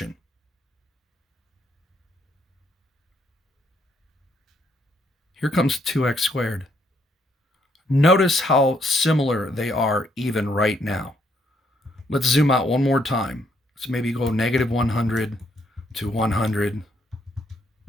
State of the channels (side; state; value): both; normal; correlation 0.72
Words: Here comes 2x squared. Notice how similar they are even right now. Let's zoom out one more time. Let's maybe go -100 to 100.